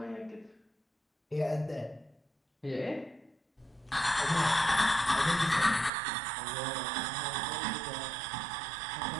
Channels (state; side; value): drops out; left; at 5.9 s